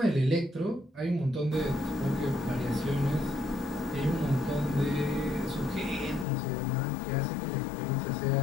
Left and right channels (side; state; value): right; drops out; at 6.2 s